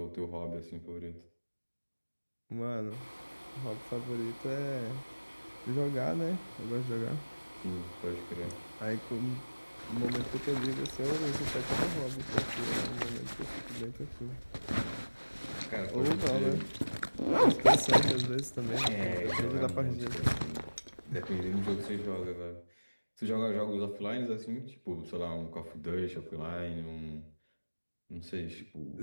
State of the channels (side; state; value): both; inverted; correlation -1.00